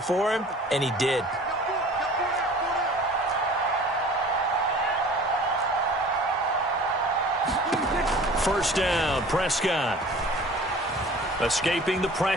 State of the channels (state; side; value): normal; both; correlation 0.45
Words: him, and he did. First down, Prescott. Escaping the